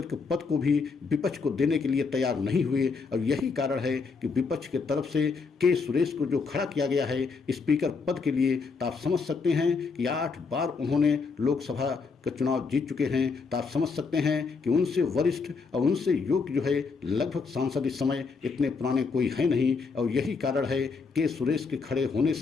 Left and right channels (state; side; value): quieter; right; 4.8 dB